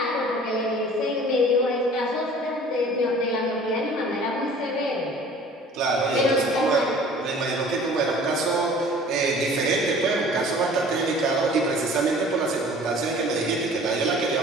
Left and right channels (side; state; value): both; normal; correlation 0.48